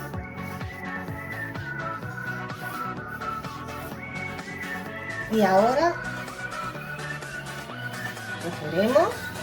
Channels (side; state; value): both; identical; correlation 1.00